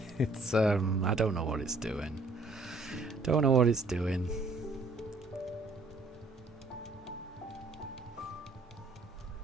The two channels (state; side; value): quieter; left; 3.2 dB